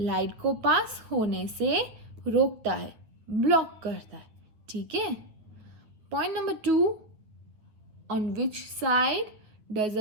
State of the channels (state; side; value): late; left; 9.2 ms